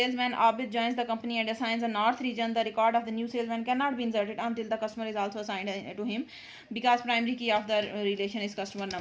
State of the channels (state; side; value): identical; both; correlation 1.00